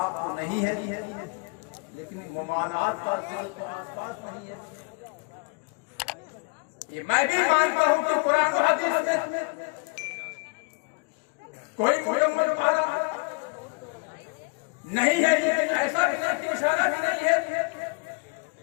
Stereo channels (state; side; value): quieter; right; 31.7 dB